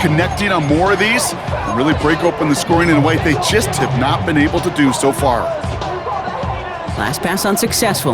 on more of these and really break open the scoring in a way they just have not been able to do so far. Last pass unsuccessful.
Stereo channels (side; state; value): both; identical; correlation 1.00